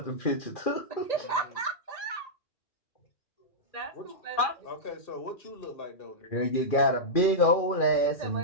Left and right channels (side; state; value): right; late; 2.4 ms